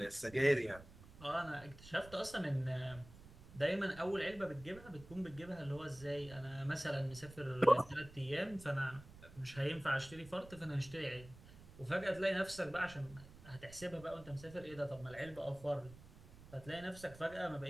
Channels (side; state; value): right; noise; rumble, 18 dB below the sound